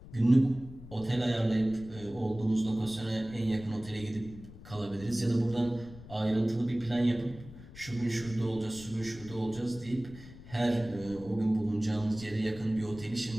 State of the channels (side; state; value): left; noise; rumble, 17 dB below the sound